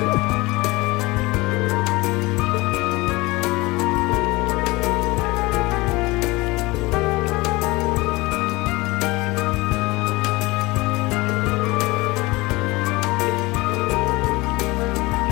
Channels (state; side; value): quieter; right; 22.3 dB